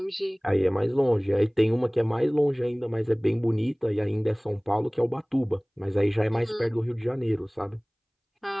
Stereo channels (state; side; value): identical; both; correlation 1.00